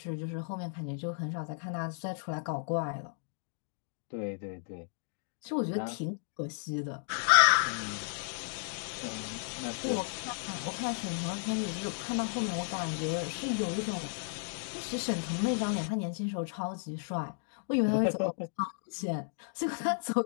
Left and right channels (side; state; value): right; silent; digital silence